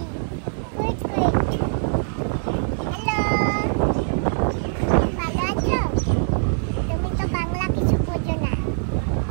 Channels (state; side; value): silent; left; 63 dB below the other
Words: হ্যালো, ভালো আছো? তুমি তো বাংলা কিছু বোঝো না,